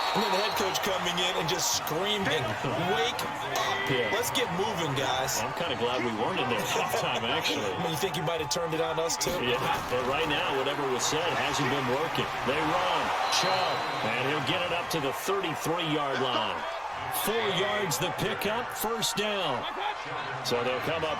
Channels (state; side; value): identical; both; correlation 1.00